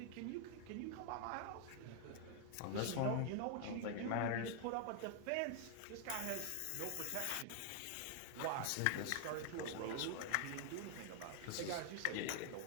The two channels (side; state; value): both; different; correlation 0.00